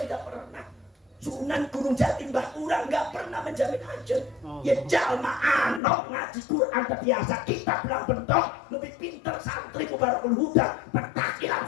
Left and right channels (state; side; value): drops out; right; at 5.8 s